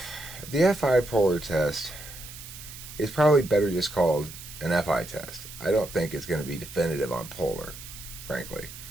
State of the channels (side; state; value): right; noise; hiss, 14 dB below the sound